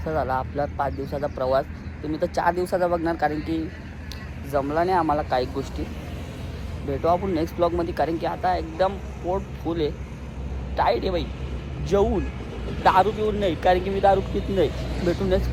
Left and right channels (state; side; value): identical; both; correlation 1.00